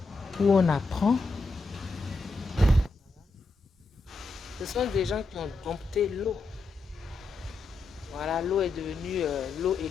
où on apprend. Ce sont des gens qui ont dompté l'eau. Voilà, l'eau est devenue, l'eau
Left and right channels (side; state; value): right; quieter; 3.5 dB